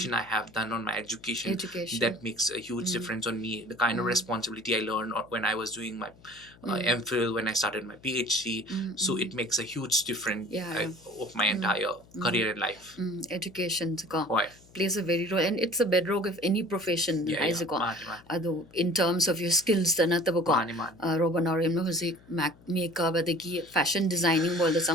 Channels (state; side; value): noise; left; hum, 26 dB below the sound